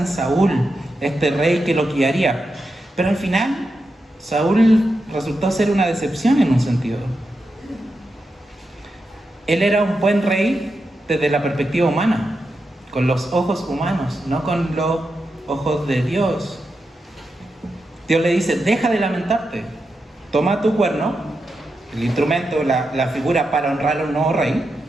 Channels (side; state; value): both; normal; correlation 0.87